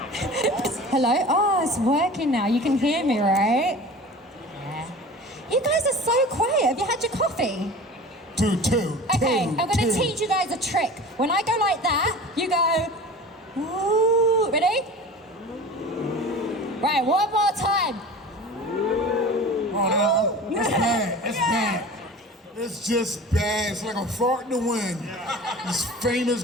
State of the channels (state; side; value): normal; both; correlation 0.38